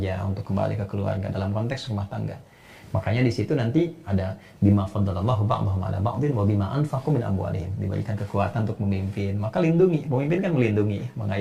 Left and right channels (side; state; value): both; identical; correlation 1.00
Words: untuk kembali ke keluarga dalam konteks rumah tangga. Makanya di situ nanti ada bima faddalallahu ba'dahum 'ala ba'din wa bima anfaqu min amwalihim, diberikan kekuatan untuk memimpin. Maka lindungi, pemimpin kan melindungi,